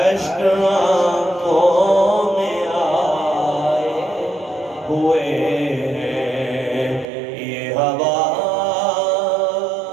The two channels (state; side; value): drops out; left; at 7.1 s